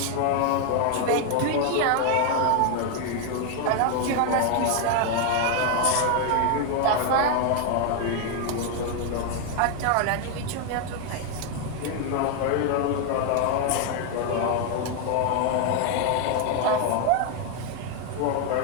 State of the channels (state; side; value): different; both; correlation 0.01